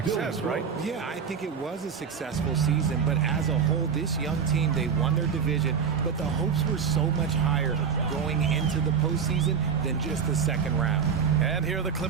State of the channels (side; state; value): left; quieter; 6.6 dB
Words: right? Yeah, I think it was a successful season, but as a whole, this young team, they won their division, but the hopes were so much higher going into the postseason than just the second round. And here are the